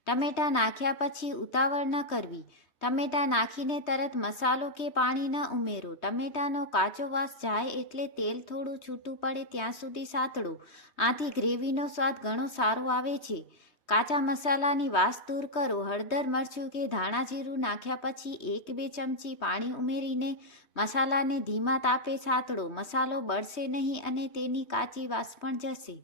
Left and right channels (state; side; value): late; right; 3.2 ms